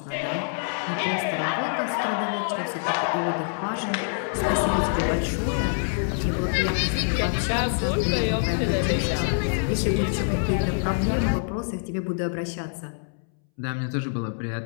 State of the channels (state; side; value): silent; right; 61 dB below the other